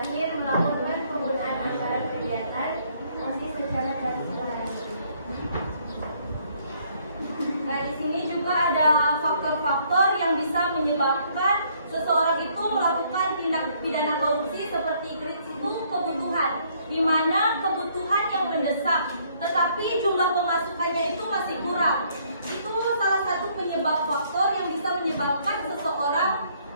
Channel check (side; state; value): both; inverted; correlation -0.66